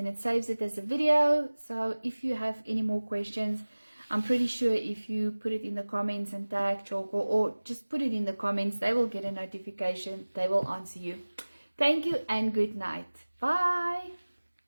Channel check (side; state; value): both; inverted; correlation -1.00